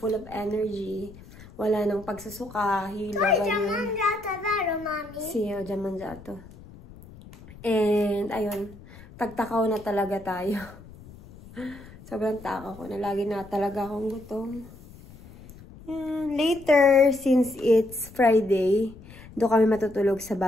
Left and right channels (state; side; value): noise; left; rumble, 19 dB below the sound